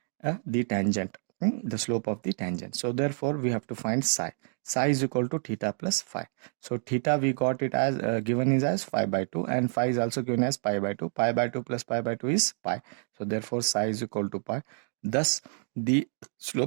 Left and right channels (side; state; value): left; silent; digital silence